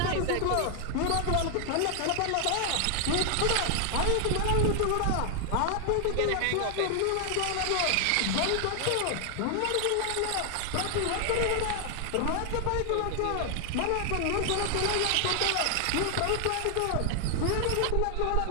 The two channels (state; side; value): different; both; correlation 0.00